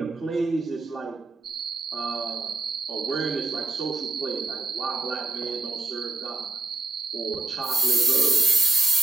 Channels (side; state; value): left; quieter; 3.3 dB